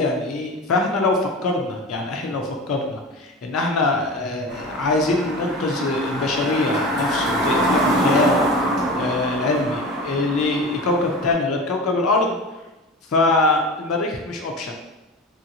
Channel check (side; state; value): both; normal; correlation 0.31